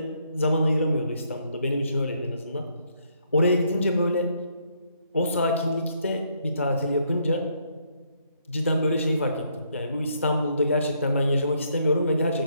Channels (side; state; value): both; inverted; correlation -0.71